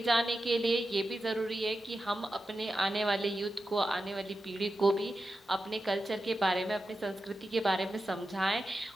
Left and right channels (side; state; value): both; normal; correlation 0.91